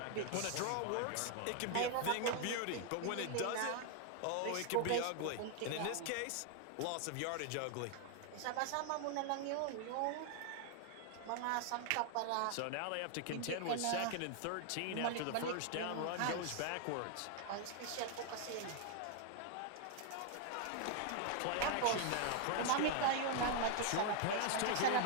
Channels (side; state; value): both; different; correlation 0.00